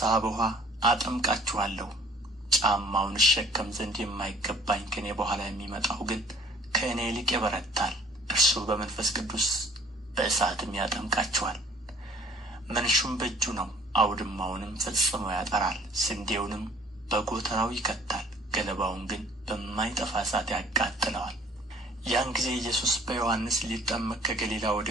በውኃ አጠምቃችኋለሁ። ጫማውን እሸከም ዘንድ የማይገባኝ ከእኔ በኋላ የሚመጣው ግን ከእኔ ይልቅ ይበረታል። እርሱ በመንፈስ ቅዱስ በእሳትም ያጠምቃችኋል። መንሹም በእጁ ነው፣ አውድማውንም ፈጽሞ ያጠራል፣ ስንዴውንም በጎተራው ይከታል፣ ገለባውን ግን በማይጠፋ እሳት ያቃጥለዋል። ያን ጊዜ ኢየሱስ በዮሐንስ ሊጠመቅ ከገሊላ ወደ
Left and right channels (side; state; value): both; normal; correlation 0.54